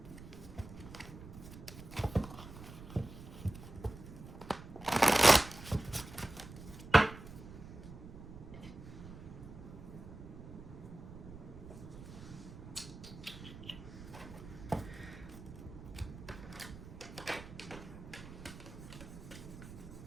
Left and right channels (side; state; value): right; noise; rumble, 14 dB below the sound